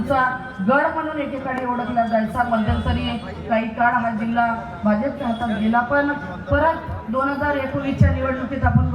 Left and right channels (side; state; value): both; identical; correlation 1.00